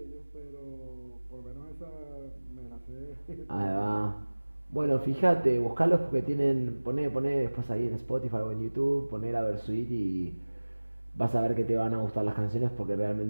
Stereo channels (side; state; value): both; inverted; correlation -1.00